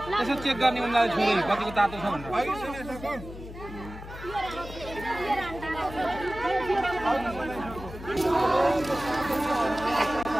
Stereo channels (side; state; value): left; noise; hum, 13 dB below the sound